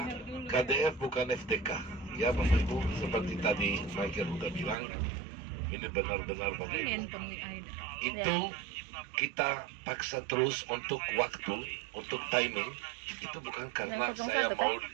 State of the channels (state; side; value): drops out; left; at 4.8 s